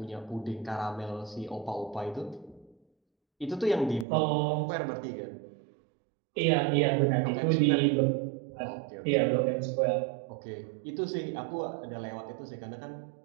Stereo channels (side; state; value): left; drops out; at 4.0 s